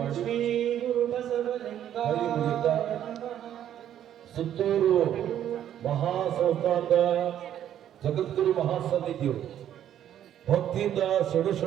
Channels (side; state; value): left; quieter; 10.7 dB